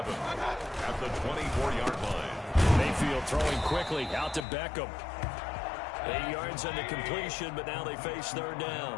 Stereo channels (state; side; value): drops out; right; at 4.5 s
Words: at the 24-yard line. Mayfield throwing quickly out to Beckham. 8 yards on the completion, but now they face 3rd